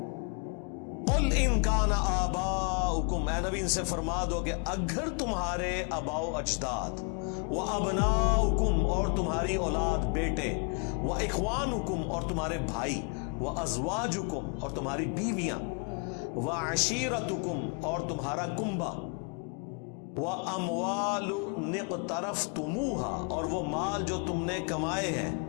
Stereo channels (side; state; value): right; quieter; 36.8 dB